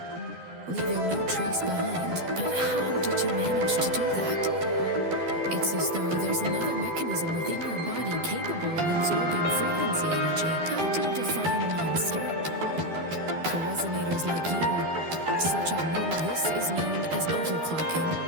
leaving no trace behind. But how did you manage to do that? It's as though there's another mechanism within your body capable of absorbing frequency energy. How do you define monster? For resonators like you, such abnormal. This is known as overclocking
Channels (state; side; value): late; left; 12 ms